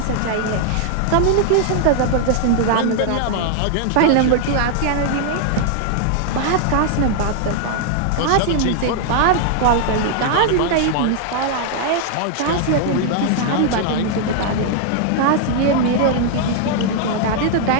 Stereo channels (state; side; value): different; both; correlation 0.00